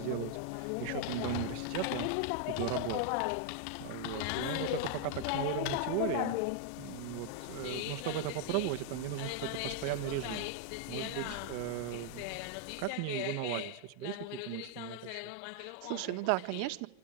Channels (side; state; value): both; different; correlation 0.00